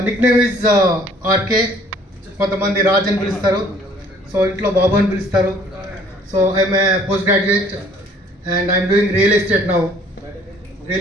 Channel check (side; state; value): both; normal; correlation 0.57